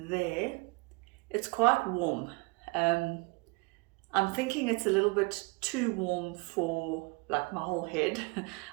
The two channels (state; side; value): quieter; left; 28.6 dB